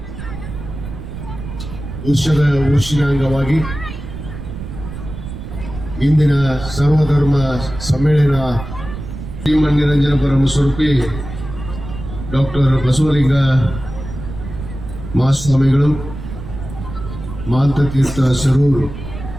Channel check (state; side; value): noise; right; rumble, 10 dB below the sound